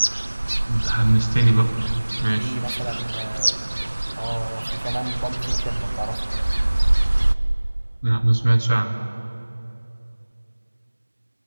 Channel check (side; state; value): both; inverted; correlation -1.00